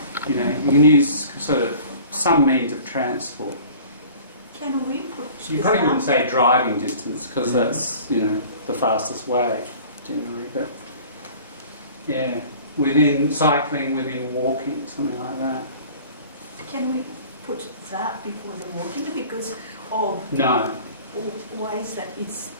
You know, you can use sort of some means of transport. Can we put You probably wouldn't say driving distance because that's, you know, the fastest way generally, but yeah, within cycling, within walking, something like that. Can we put that before the walking because of No. why is that it's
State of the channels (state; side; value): inverted; both; correlation -0.45